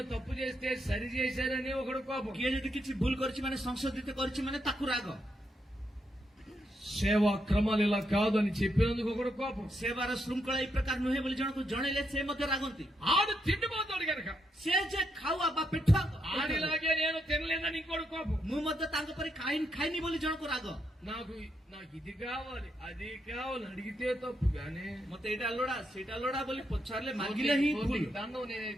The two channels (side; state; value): both; normal; correlation 0.80